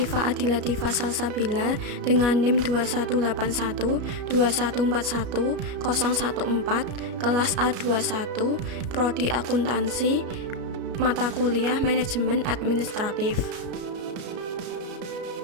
Adilatifah Salsabila dengan NIM 21812141 kelas A21, Prodi Akuntansi, mata kuliah Manajemen Administratif.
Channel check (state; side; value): late; left; 33 ms